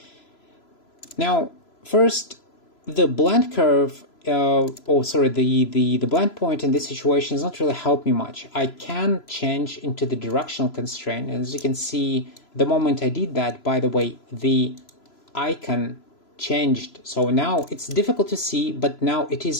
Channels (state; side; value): late; right; 3.0 ms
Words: Now, first, the blend curve, the blend point in this situation does not really help me much. I can change into the directional constraint. And as you can see, the moment I did that, by the way, the icon changed. So now it's difficult to see, but now it